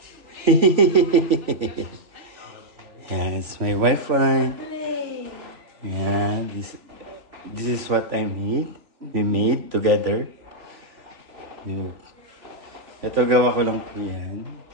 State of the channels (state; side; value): late; left; 3.2 ms